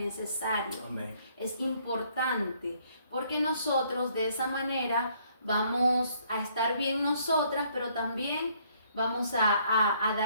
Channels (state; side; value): inverted; both; correlation -0.65